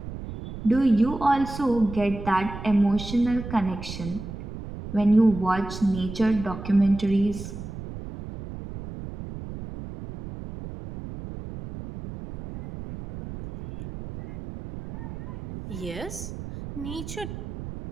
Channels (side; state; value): right; noise; rumble, 10 dB below the sound